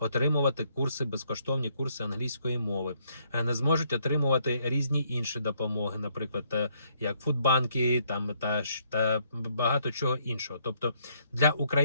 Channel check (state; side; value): inverted; both; correlation -0.70